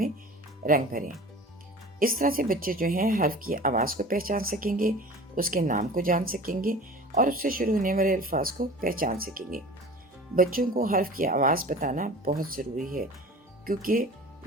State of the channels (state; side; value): normal; both; correlation 0.40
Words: رنگ بھریں. اس طرح سے بچے جو ہیں حرف کی آواز کو پہچان سکیں گے، اس کے نام کو جان سکیں گے اور اس سے شروع ہونے والے الفاظ کو پہچان سکیں گے. بچوں کو حرف کی آواز بتانا بہت ضروری ہے، کیونکہ